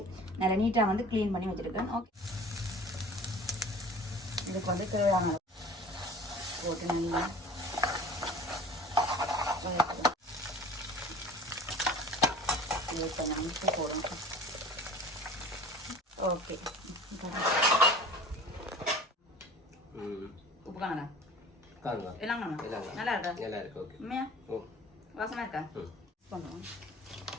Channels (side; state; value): both; normal; correlation 0.43